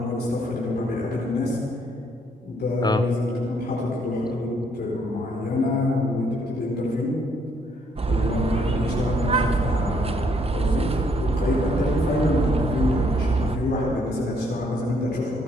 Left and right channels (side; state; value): both; normal; correlation 0.69